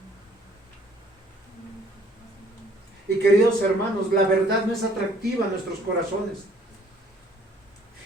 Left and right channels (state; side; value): normal; both; correlation 0.59